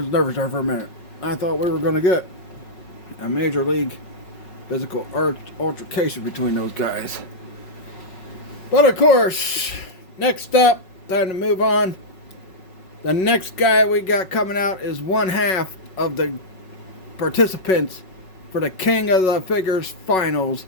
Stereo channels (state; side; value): late; right; 5.4 ms